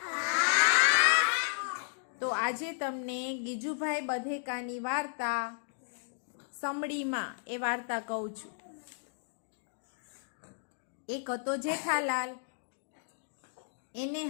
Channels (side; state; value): right; silent; digital silence